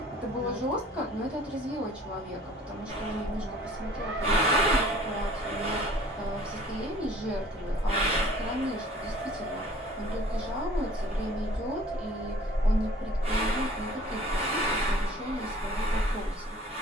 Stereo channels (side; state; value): both; normal; correlation 0.51